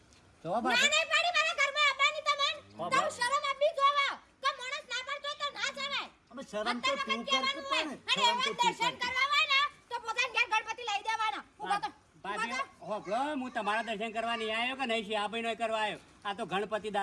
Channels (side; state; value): both; identical; correlation 1.00